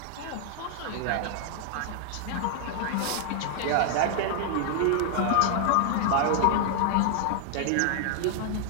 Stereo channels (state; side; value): different; both; correlation 0.00